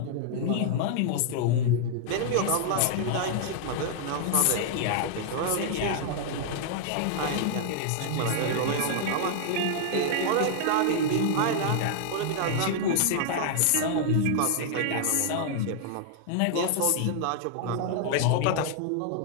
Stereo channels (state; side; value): different; both; correlation -0.01